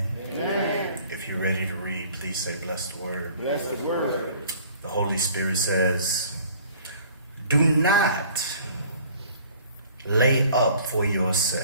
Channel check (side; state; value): both; inverted; correlation -0.52